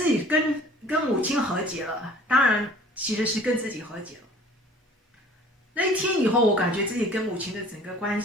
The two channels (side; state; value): both; normal; correlation 0.49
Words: 己跟母亲和解了，当然其实是跟自己和解了。那一天以后，我感觉自己跟母亲的整个关